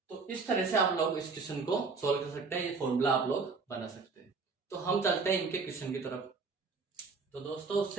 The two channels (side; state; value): left; quieter; 4.5 dB